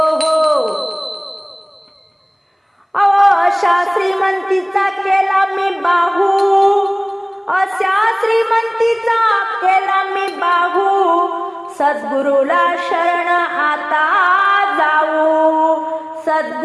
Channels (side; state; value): both; identical; correlation 1.00